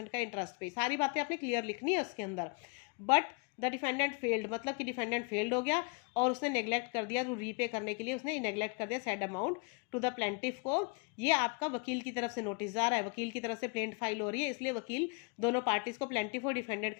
का इंटरेस्ट पे, सारी बातें आपने क्लियर लिखनी है उसके अंदर। बट द डिफेंडेंट फेल्ड, मतलब कि डिफेंडेंट फेल्ड हो गया और उसने नेग्लेक्ट कर दिया, तो रीपे करने के लिए उसने नेग्लेक्ट कर दिया said amount to the plaintiff को। ये आपका वकील की तरफ से नोटिस जा रहा है, वकील की तरफ से प्लेंट फाइल हो रही है, इसलिए वकील दोनों पार्टीज को प्लेंटिफ और डिफेंडेंट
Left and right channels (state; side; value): quieter; right; 34.8 dB